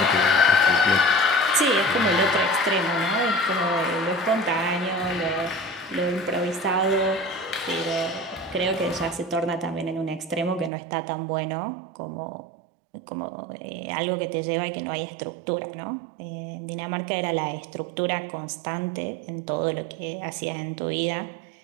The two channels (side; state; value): left; drops out; at 10.7 s